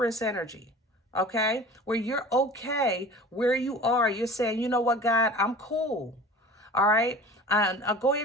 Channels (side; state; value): both; normal; correlation 0.40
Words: energy. Okay, where you're okay where you are. You're saying, you know what, God, I'm cool. All right, and go